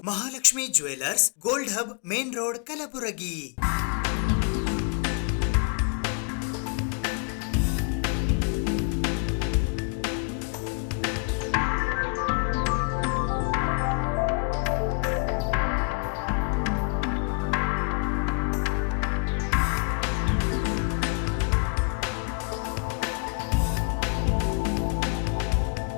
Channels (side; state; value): right; quieter; 37.7 dB